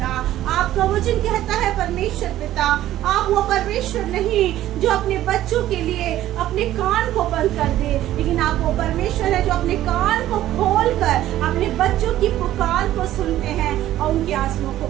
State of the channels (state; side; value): quieter; left; 13.6 dB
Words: आपका वचन कहता है परमेश्वर पिता, आप वो परमेश्वर नहीं जो अपने बच्चों के लिए अपने कान को बंद कर दे, लेकिन आप वो परमेश्वर है जो अपने कान को खोलकर अपने बच्चों की पुकार को सुनते हैं और उनके आंसुओं को